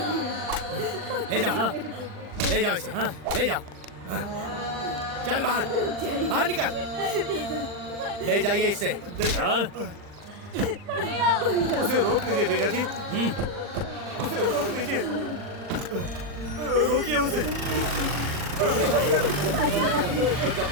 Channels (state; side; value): late; left; 40 ms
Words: ले जाओ, ले जाओ इसे, ले जाओ। चल बाहर, बाहर निकल। ले जाइए इसे। उसे रोक लीजिए जीजा जी, उसे रोक लीजिए, रोकिए उसे।